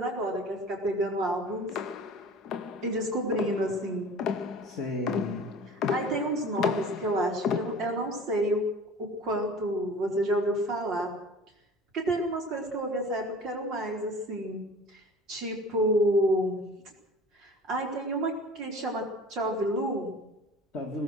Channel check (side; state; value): both; normal; correlation 0.42